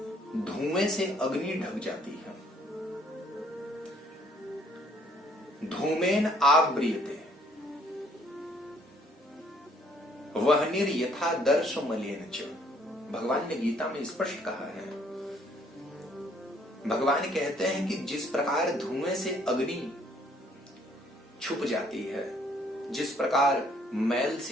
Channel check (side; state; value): both; normal; correlation 0.63